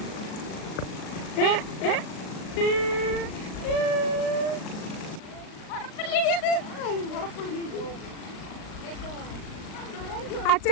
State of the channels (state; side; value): late; right; 38 ms